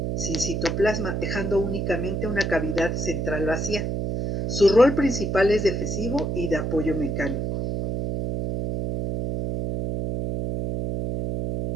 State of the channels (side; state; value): right; noise; hum, 2 dB below the sound